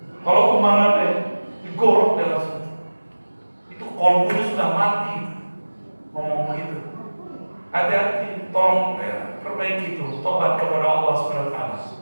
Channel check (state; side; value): inverted; both; correlation -1.00